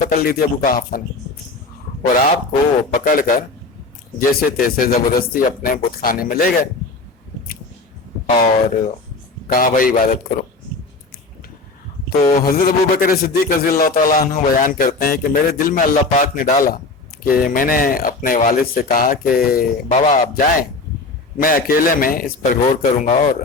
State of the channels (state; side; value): quieter; right; 3.6 dB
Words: لی تھی ابو قحافہ نے، اور آپ کو پکڑ کر جیسے تیسے زبردستی اپنے بت خانے میں لے گئے اور کہا بھائی عبادت کرو۔ تو حضرت ابو بکر صدیق رضی اللہ تعالیٰ عنہ بیان کرتے ہیں کہ میرے دل میں اللہ پاک نے ڈالا کہ میں نے اپنے والد سے کہا کہ بابا آپ جائیں، میں اکیلے میں اس پر غور کروں گا اور